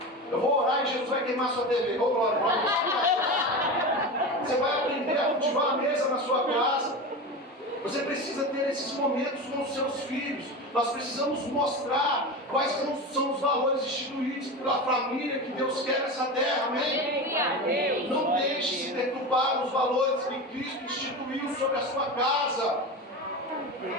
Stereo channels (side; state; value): both; normal; correlation 0.25